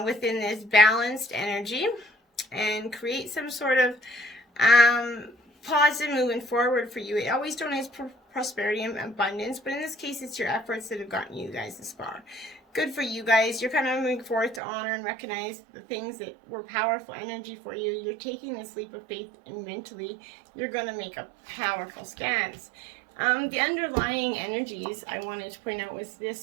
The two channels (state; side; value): drops out; left; at 14.6 s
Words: within this balanced energy and create some sort of positive movement forward for you. It always donates prosperity and abundance, but in this case, it's your efforts that have gotten you guys this far. good for you guys. You're kind of moving forward to honor and recognize the things that were powerful energy for you. You're taking this leap of faith, and mentally you're going to make a powerful stance. The underlying energies I wanted to point out was